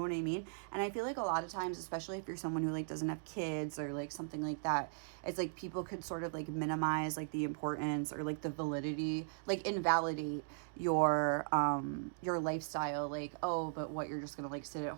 I mean? And I feel like a lot of times, especially if you're someone who like doesn't have kids or like something like that, it's like people could sort of like minimize like the importance or like the validity, like invalidate your lifestyle. Like, oh, but what, you're just gonna like sit at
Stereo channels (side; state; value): left; silent; digital silence